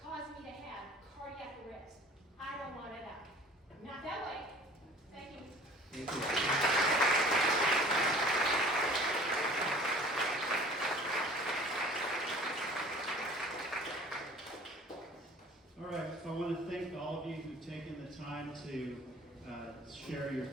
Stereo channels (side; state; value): both; normal; correlation 0.48